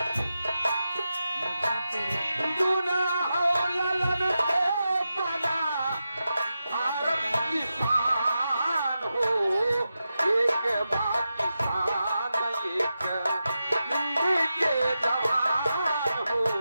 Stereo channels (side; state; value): both; inverted; correlation -0.90